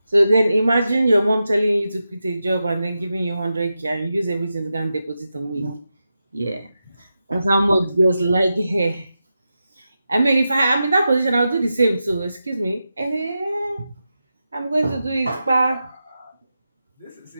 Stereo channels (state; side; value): inverted; both; correlation -0.90